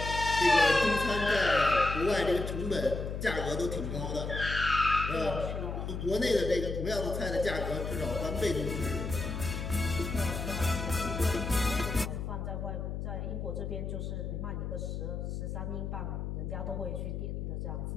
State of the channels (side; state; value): left; noise; hum, 4 dB below the sound